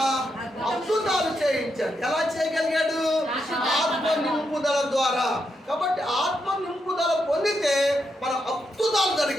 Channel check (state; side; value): normal; both; correlation 0.82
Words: అద్భుతాలు చేయించాడు. ఎలా చేయగలిగాడు? ఆత్మ నింపుదల ద్వారా. కాబట్టి ఆత్మ నింపుదల పొందితే మన అద్భుతాలు